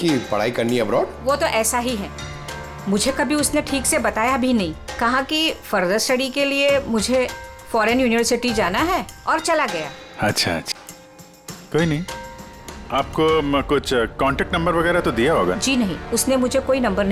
पढ़ाई करनी है अब्रॉड? वो तो ऐसा ही है, मुझे कभी उसने ठीक से बताया भी नहीं। कहा कि फर्दर स्टडी के लिए मुझे फॉरेन यूनिवर्सिटी जाना है और चला गया। अच्छा अच्छा, कोई नहीं। आपको कुछ कांटेक्ट नंबर वगैरह तो दिया होगा? जी नहीं, उसने मुझे कोई नंबर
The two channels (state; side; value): identical; both; correlation 1.00